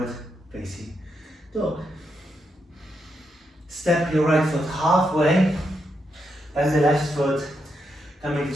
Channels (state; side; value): normal; both; correlation 0.82